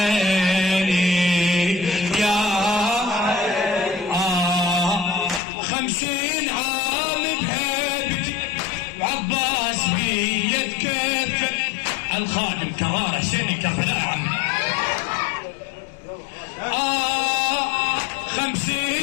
يا عيني 50 عام بهيبتي وعباس بيد كفة الخادم كرار حسيني كربلاء عمي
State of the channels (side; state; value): right; drops out; at 5.4 s